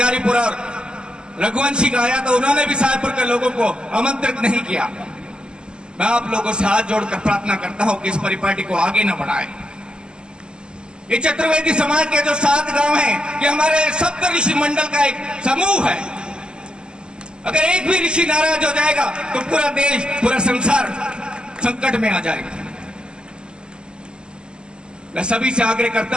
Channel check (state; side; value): late; left; 0.048 ms